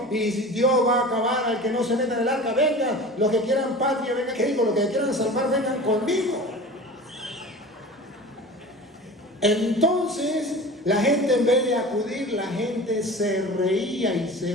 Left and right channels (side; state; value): both; normal; correlation 0.36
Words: y Dios va a acabar al que no se meta en el arca, vengan, los que quieran patria, vengan, ¿qué digo? Los que quieran salvar, vengan conmigo. Entonces la gente, en vez de acudir, la gente se reía y se